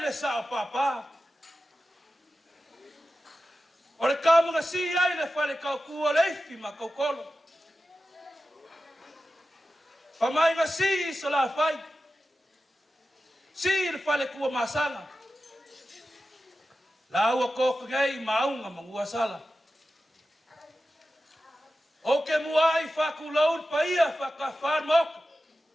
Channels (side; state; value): both; normal; correlation 0.93